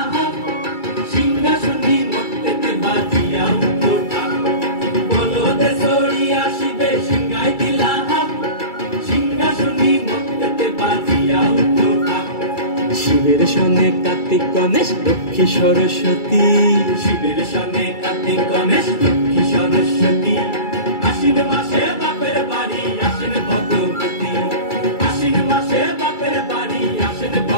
শিবের সনে কার্তিক গণেশ লক্ষ্মী সরস্বতী শিবের সনে কার্তিক গণেশ লক্ষ্মী সরস্বতী আশ্বিন মাসে বাপের বাড়ি আসেন ভগবতী আশ্বিন মাসে বাপের বাড়ি আসেন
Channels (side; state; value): right; late; 2.3 ms